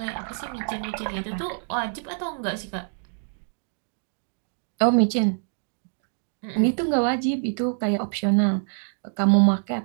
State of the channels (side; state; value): left; silent; digital silence